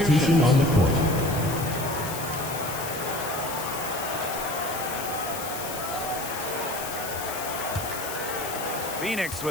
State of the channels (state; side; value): noise; left; hiss, 8 dB below the sound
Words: substitutions. on the court. Phoenix